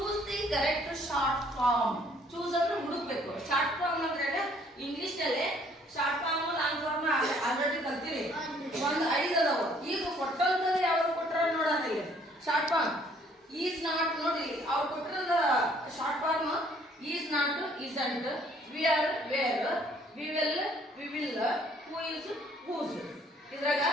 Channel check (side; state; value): both; normal; correlation 0.61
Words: the correct short form. Choose ಅಂದ್ರೆ ಹುಡುಕ್ಬೇಕು. ಶಾರ್ಟ್ ಫಾರ್ಮ್ ಅಂದ್ರೆ ಇಂಗ್ಲಿಷ್ ನಲ್ಲಿ short form long form already ಕಲ್ತೀರಿ. ಒಂದು 5 ಅದಾವ. ಈಗ ಕೊಟ್ಟಂತದ್ದು ಯಾವ್ದು ಕೊಟ್ಟಾರ ನೋಡೋಣ. Short form is not. ನೋಡಿ ಅವ್ರು ಕೊಟ್ಟಿರೋದ short form is not, isn't, we are, we're, we will, we will, who is, who's. ಇದ್ರಾಗ